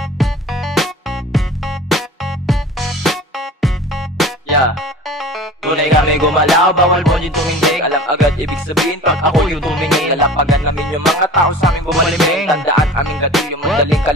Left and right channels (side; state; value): both; normal; correlation 0.40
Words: Yeah. Tunay kami gumalaw, bawal mo yung tumindig. Alam agad ibig sabihin pag ako yung tumingin. Lalapagan namin yung mga tao sa aming bumaliming. Tandaan aming gatilyo, madaling